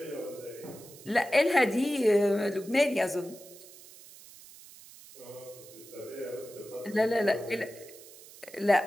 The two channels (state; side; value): noise; right; hiss, 19 dB below the sound